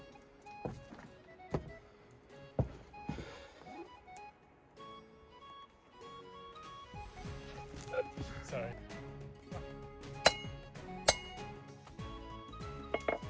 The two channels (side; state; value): both; identical; correlation 1.00